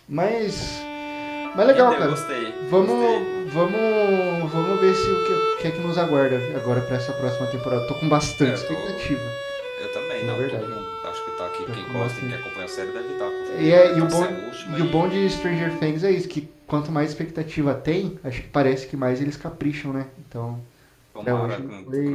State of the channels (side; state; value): both; identical; correlation 1.00